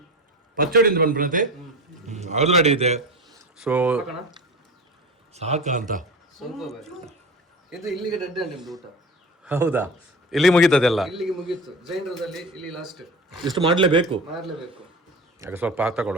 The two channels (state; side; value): normal; both; correlation 0.30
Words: ಪಚ್ಚಡಿಯಿಂದ ಬಂದ್ಬಿಡುತ್ತೆ ಅದು ರೆಡಿ ಇದೆ ಸೊ ಸಾಕ ಅಂತ ಇದು ಇಲ್ಲಿಗೆ ಡೆಡ್ ಊಟ ಹೌದಾ ಇಲ್ಲಿ ಮುಗೀತದೆಲ್ಲ. ಇಲ್ಲಿಗೆ ಮುಗೀತು. ಜೈನರದಲ್ಲಿ ಇಲ್ಲಿ ಲಾಸ್ಟ್. ಇಷ್ಟು ಮಾಡಲೇಬೇಕು. ಮಾಡಲೇಬೇಕು. ಯಾಕೆ ಸ್ವಲ್ಪ